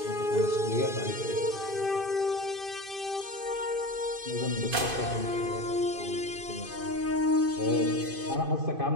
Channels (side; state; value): left; late; 2.5 ms